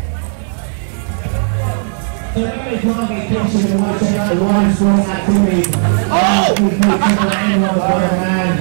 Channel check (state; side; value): silent; left; digital silence